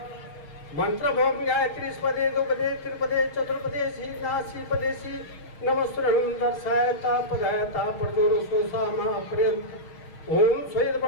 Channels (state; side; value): late; right; 6.5 ms